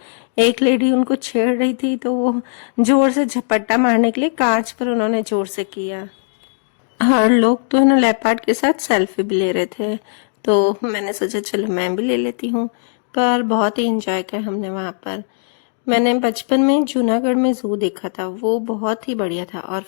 एक लेडी उनको छेड़ रही थी तो वो जोर से झपट्टा मारने के लिए कांच पर उन्होंने जोर से किया। हर लोग तो है ना लेपर्ड के साथ सेल्फी भी ले रहे थे, तो मैंने सोचा चलो मैं भी ले लेती हूँ। पर बहुत ही इंजॉय किया हमने वहाँ पर। मैंने बचपन में जूनागढ़ में जू देखा था, वो बहुत ही बढ़िया था। और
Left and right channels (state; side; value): silent; right; digital silence